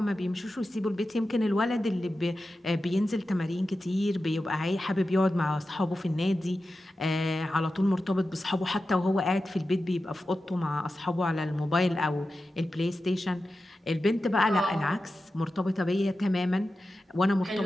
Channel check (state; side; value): normal; both; correlation 0.92